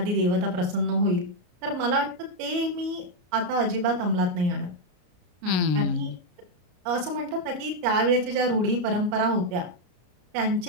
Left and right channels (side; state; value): left; late; 34 ms